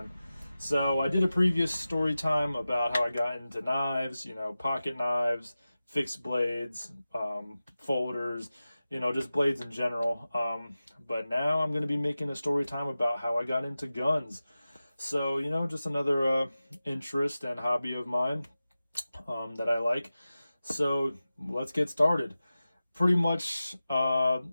So I did a previous story time about how I got into knives, pocket knives, fixed blades, folders, just blades in general. But now I'm going to be making a story time about how I got into guns. So, just another interest and hobby of mine that I like. So let's get started. Pretty much,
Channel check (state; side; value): inverted; both; correlation -0.95